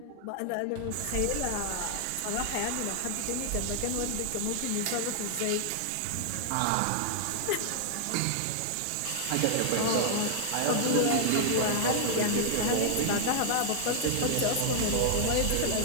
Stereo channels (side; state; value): both; different; correlation -0.01